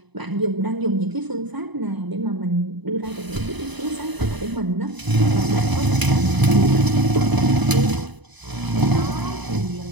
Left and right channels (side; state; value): left; late; 1.0 ms